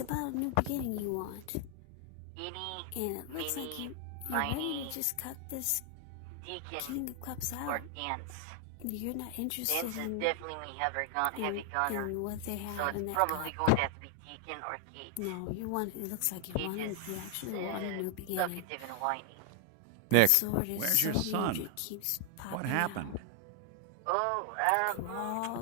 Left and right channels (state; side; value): different; both; correlation 0.00